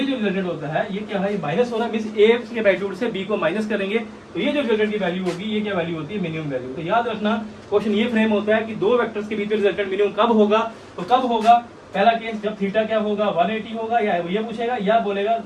जो रिजल्टेंट होता है ये क्या है, माइनस हो रहा है, मींस a के मैग्नीट्यूड से b को माइनस करेंगे तो ये जो रिजल्टेंट की वैल्यू होगी ये क्या वैल्यू होती है, मिनिमम वैल्यू। तो याद रखना क्वेश्चन ये फ्रेम होता है कि दो वेक्टर्स के बीच में रिजल्टेंट मिनिमम कब होगा। तो कब होगा, पहला केस जब थीटा क्या होगा 180 होगा, या ये पूछेगा या बोलेगा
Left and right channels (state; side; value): identical; both; correlation 1.00